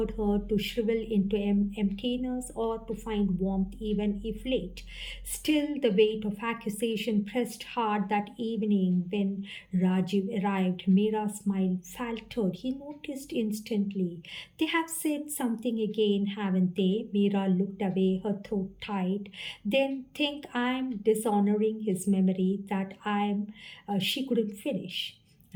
her to shrivel into emptiness or to find warmth even if late? Still, the weight of accusation pressed hard that evening when Rajiv arrived. Mira's smile faltered. He noticed instantly. They have said something again, haven't they? Mira looked away, her throat tight. Then think I'm dishonoring his memory, that she couldn't finish.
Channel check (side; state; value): both; identical; correlation 1.00